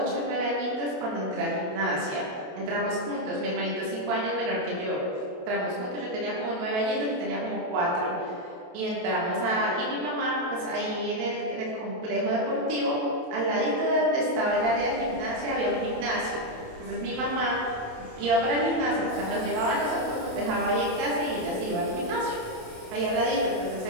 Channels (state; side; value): late; left; 28 ms